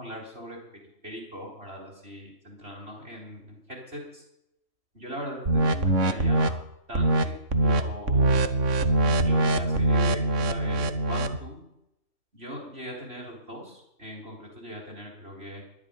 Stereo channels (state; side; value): late; left; 3.5 ms